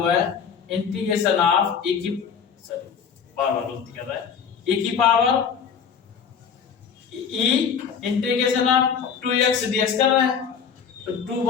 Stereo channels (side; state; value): right; quieter; 6.9 dB